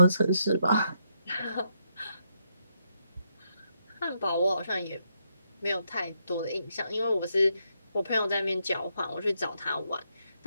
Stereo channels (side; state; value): both; inverted; correlation -0.79